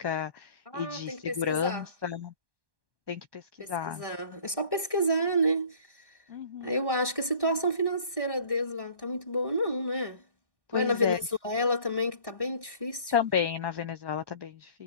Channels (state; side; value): late; left; 1.1 ms